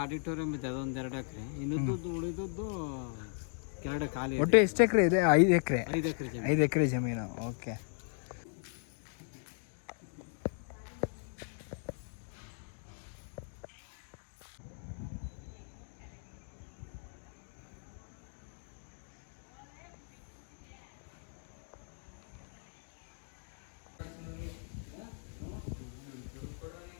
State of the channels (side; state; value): right; silent; 53 dB below the other